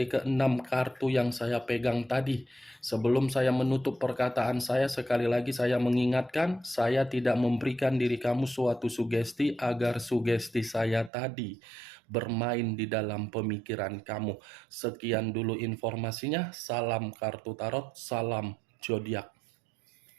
ke-6 kartu yang saya pegang tadi. Sebelum saya menutup perkataan saya, sekali lagi saya mengingatkan, saya tidak memberikan diri kamu suatu sugesti agar sugesti saya tadi bermain di dalam pemikiran kamu. Sekian dulu informasinya, salam kartu tarot, salam zodiak.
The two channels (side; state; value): left; drops out; at 11.1 s